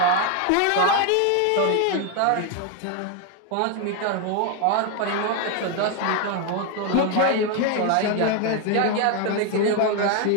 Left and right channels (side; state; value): both; different; correlation 0.01